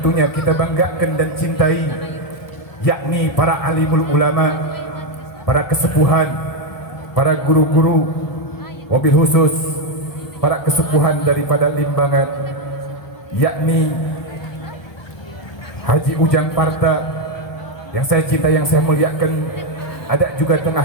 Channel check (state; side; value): late; right; 1.2 ms